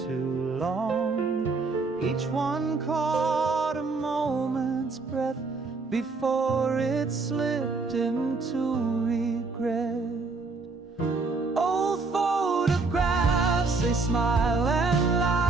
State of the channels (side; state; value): left; quieter; 4.0 dB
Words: long. Each one caught a moment's breath before it slipped into regret. Old photographs, they smile and